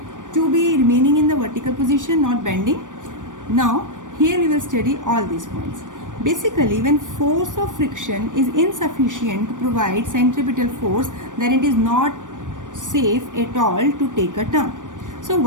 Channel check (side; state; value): left; late; 0.87 ms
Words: to be remaining in the vertical position, not bending. Now here we will study all these points. Basically, when force of friction is insufficient to provide centripetal force, then it is not safe at all to take a turn. So